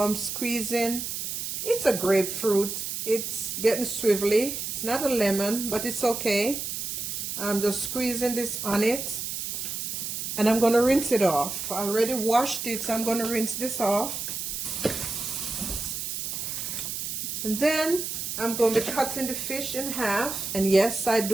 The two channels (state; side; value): noise; right; hiss, 4 dB below the sound